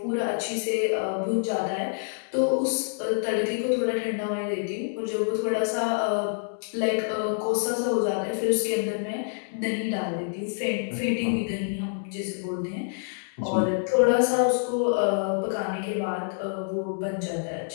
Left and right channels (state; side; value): silent; right; digital silence